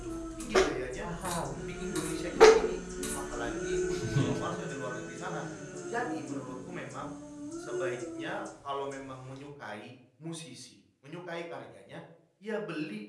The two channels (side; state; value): both; identical; correlation 1.00